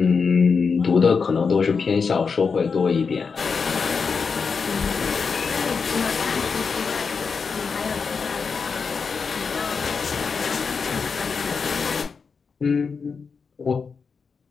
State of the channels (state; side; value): quieter; right; 5.3 dB